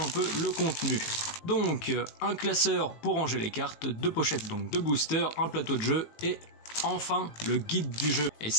peu le contenu. Donc un classeur pour ranger les cartes, deux pochettes donc de boosters, un plateau de jeu et enfin le guide du jeu. Et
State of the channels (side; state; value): right; late; 18 ms